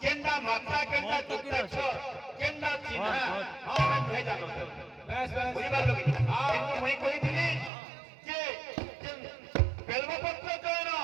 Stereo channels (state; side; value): drops out; left; at 7.7 s